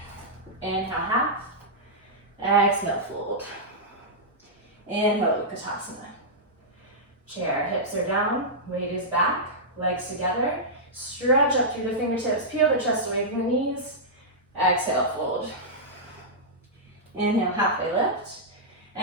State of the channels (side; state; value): both; normal; correlation -0.11